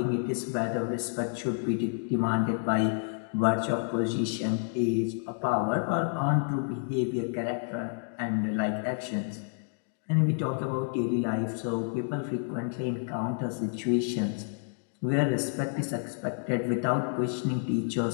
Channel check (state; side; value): silent; right; 58 dB below the other